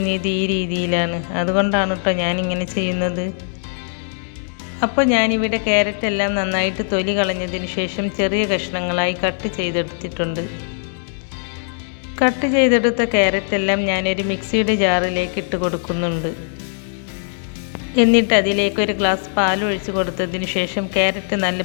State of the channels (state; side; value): silent; right; 66 dB below the other